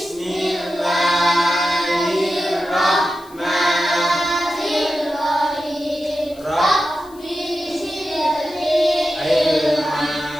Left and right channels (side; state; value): left; noise; hiss, 25 dB below the sound